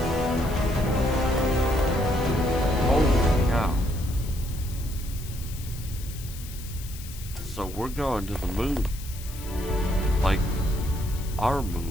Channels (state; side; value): noise; left; hiss, 15 dB below the sound